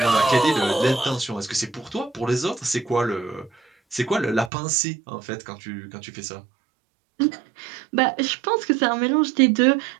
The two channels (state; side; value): drops out; left; at 4.5 s